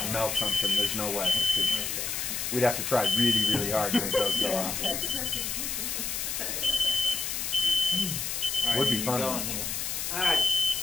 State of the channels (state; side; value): noise; left; hiss, 2 dB below the sound